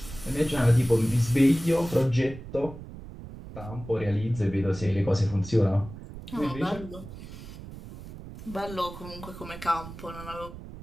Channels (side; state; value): right; noise; rumble, 13 dB below the sound